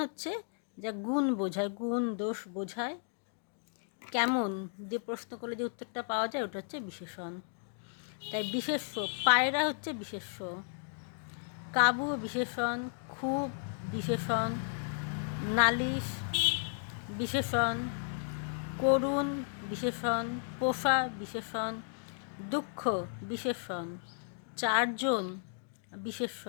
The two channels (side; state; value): right; silent; digital silence